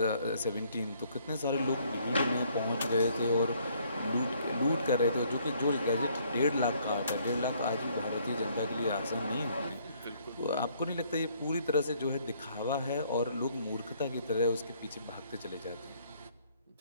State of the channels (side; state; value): both; inverted; correlation -0.64